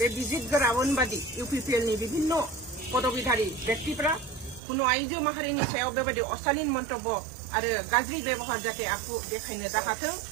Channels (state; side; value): drops out; left; at 4.6 s